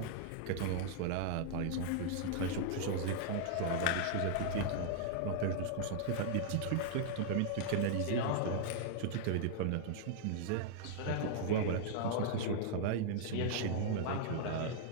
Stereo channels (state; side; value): different; both; correlation -0.01